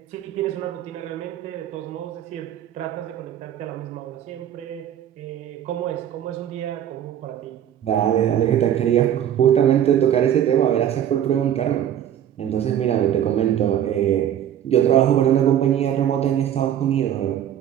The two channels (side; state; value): left; quieter; 10.4 dB